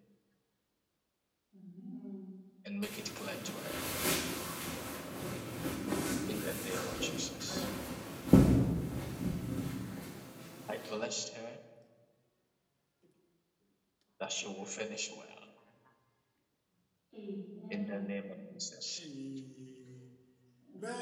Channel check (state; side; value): identical; both; correlation 1.00